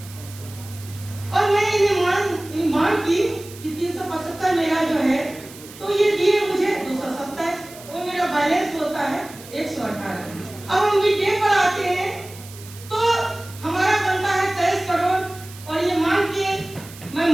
और मैंने ये मांग की कि 375 मेरा जो है, तो ये दिए मुझे 227 और मेरा बैलेंस होता है 118। अब हम मिड डे पर आते हैं तो हमारा बनता है 23 करोड़ और ये मैं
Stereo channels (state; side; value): noise; right; hiss, 18 dB below the sound